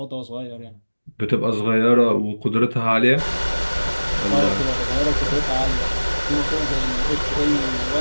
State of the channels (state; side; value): inverted; both; correlation -1.00